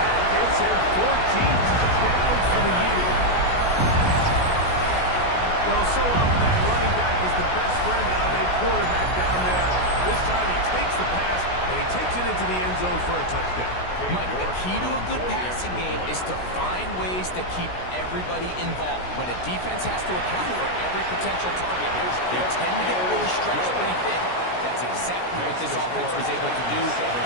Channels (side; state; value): right; late; 16 ms